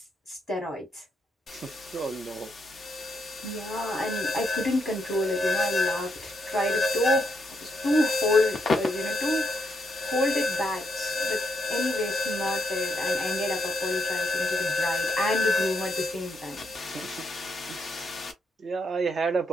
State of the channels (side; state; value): both; normal; correlation 0.78